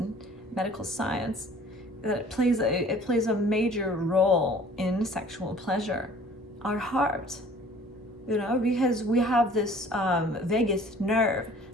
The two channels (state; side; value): normal; both; correlation 0.51